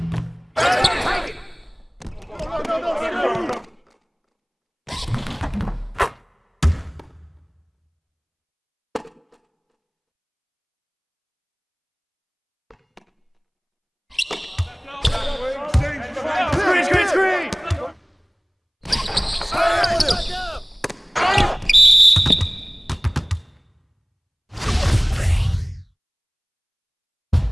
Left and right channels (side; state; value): both; identical; correlation 1.00